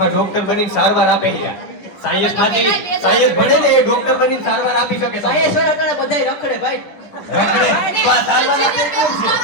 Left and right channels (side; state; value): right; late; 10 ms